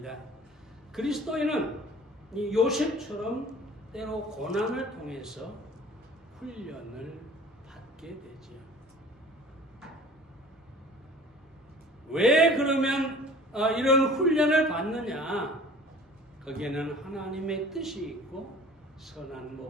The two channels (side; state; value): both; normal; correlation 0.46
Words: 그리스도인은 이 요셉처럼 때로 고난을 통해서 훈련을 받게 되죠. 왜 그러면 이런 훈련을 받느냐? 거기에는 하나님의 뜻이 있고 선한